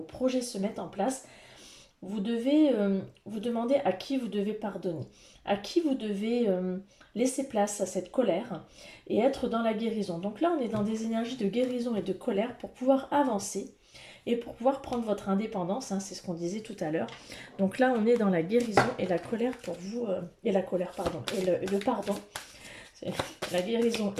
projets se mettent en place, vous devez vous demander à qui vous devez pardonner, à qui vous devez laisser place à cette colère et être dans la guérison. Donc là, on est dans des énergies de guérison et de colère pour pouvoir avancer et pour pouvoir prendre votre indépendance, hein, c'est ce qu'on disait tout à l'heure. Donc là, on est dans la guérison et la colère pour vous, et la colère, pardon, et le pardon. C'est la guérison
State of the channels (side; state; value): both; identical; correlation 1.00